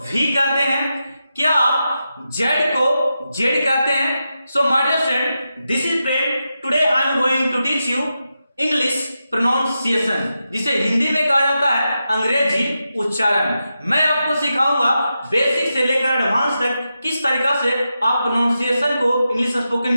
V कहते हैं? क्या आप Z को Z कहते हैं? So my dear friend, this is Prem. Today I am going to teach you English pronunciation, जिसे हिंदी में कहा जाता है अंग्रेजी उच्चारण। मैं आपको सिखाऊंगा बेसिक से लेकर एडवांस तक किस तरीका से आप प्रोनाउंसिएशन को इंग्लिश स्पोकन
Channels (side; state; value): both; inverted; correlation -0.89